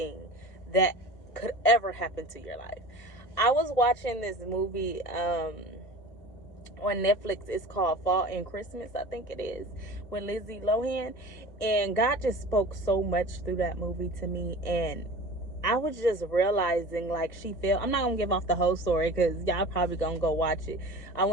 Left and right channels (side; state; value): right; late; 1.6 ms